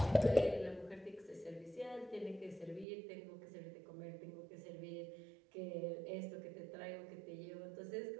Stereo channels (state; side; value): drops out; left; at 2.9 s